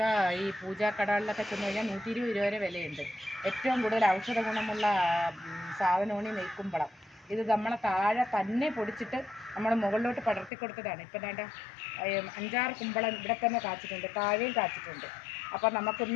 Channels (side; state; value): right; drops out; at 10.5 s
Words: ഈ പൂജാക്കടകളിലൊക്കെ ചെന്ന് കഴിഞ്ഞാൽ 120 രൂപ വരെ വിലയുണ്ട്. ഏറ്റവും കൂടുതൽ ഔഷധ ഗുണമുള്ള സാധനമാണ് ഈ നെയ്ക്കുമ്പളം. ഇത് നമ്മളെ താഴെ തന്നെ പൊടിച്ചിട്ട് നമ്മൾ മുകളിലോട്ട് പടർത്തി കൊടുത്തതാണ്. ഇപ്പം വേണ്ട 5-6 കുമ്പളം ഇവിടെ തന്നെ കാച്ചിട്ടുണ്ട്, താഴെയും കാച്ചിട്ടുണ്ട്. അപ്പം